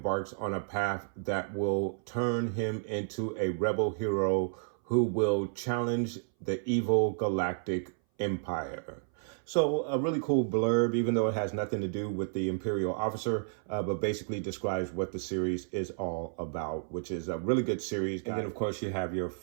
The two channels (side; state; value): left; silent; 57 dB below the other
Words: on a path that will turn him into a rebel hero who will challenge the evil galactic empire." So a really cool blurb, even though it has nothing to do with the Imperial Officer, but basically describes what the series is all about, which is a really good series. And then, of course, you have your